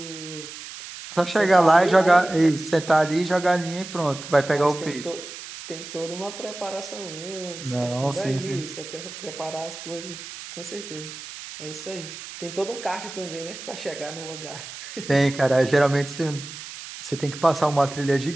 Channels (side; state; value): right; noise; hiss, 12 dB below the sound